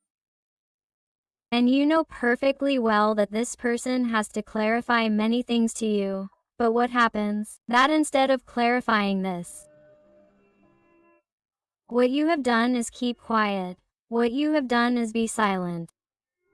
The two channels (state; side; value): identical; both; correlation 1.00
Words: And you know perfectly well that this person has to clarify many things to you, but what happens? That instead of clarifying this, what you have done is keep quiet. What you have done is be silent.